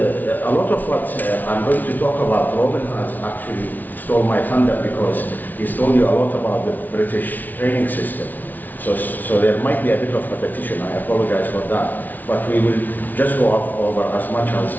lot of what I'm going to talk about. Robin has actually stole my thunder because he's told you a lot about the British training system. So there might be a bit of repetition. I apologize for that. But we will just go over as much as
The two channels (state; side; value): late; right; 0.081 ms